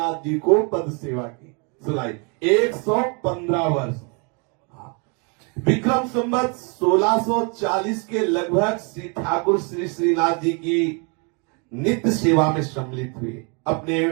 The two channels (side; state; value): left; quieter; 34.4 dB